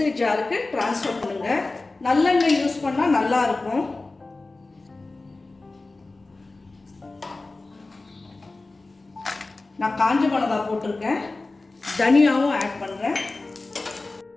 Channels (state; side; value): quieter; right; 3.3 dB